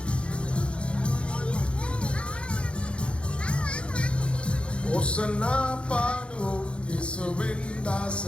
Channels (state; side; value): late; right; 0.058 ms